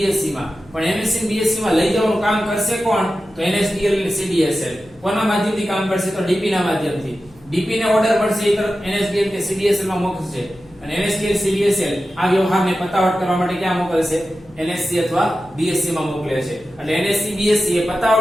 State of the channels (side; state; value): left; noise; hum, 27 dB below the sound